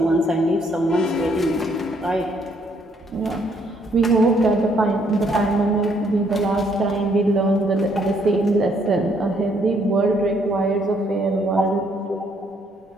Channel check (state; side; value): normal; both; correlation 0.68